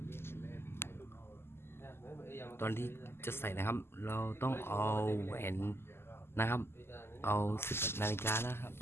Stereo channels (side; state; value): right; late; 0.12 ms